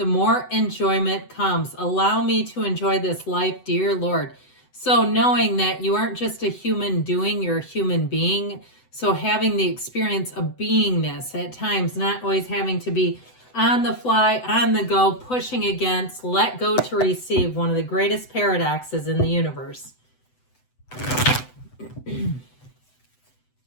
more enjoyment comes. Allow me to enjoy this life, dear Lord. So knowing that you aren't just a human doing, you're a human being. So having the experience of beingness at times, not always having to be on the fly, on the go, pushing against, let go to receive, one of the greatest paradoxes in the universe.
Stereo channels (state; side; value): late; right; 7.9 ms